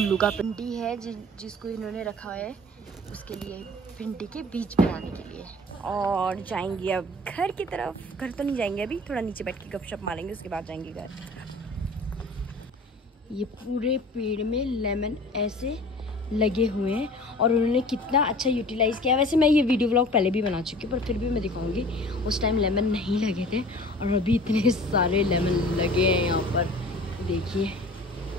का भिंडी है जिसको इन्होंने रखा है उसके लिए, भिंडी के बीज बनाने के लिए। और जाएंगे अब घर की तरफ। घर तो नहीं जाएंगे अभी, थोड़ा नीचे बैठ के गपशप मारेंगे, उसके बाद जाएंगे घर। ये पूरे पेड़ में लेमन ऐसे लगे हुए हैं, और उन्होंने कितना अच्छा यूटिलाइज किया। वैसे मैं ये वीडियो व्लॉग पहले भी बना चुकी हूँ, पर फिर भी मैं दिखाऊंगी। उस टाइम लेमन नहीं लगे थे, और अभी इतने सारे लेमन लगे हैं यहाँ पर। देखिए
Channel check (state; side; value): normal; both; correlation 0.44